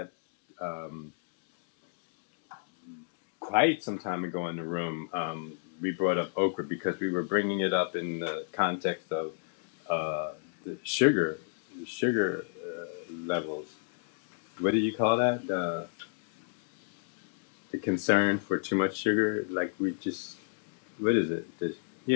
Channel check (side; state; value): right; silent; digital silence